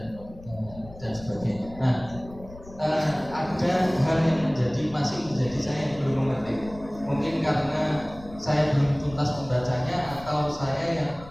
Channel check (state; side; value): noise; left; rumble, 18 dB below the sound